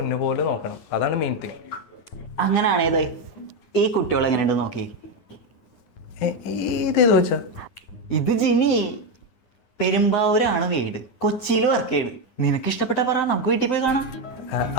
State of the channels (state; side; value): late; right; 9.7 ms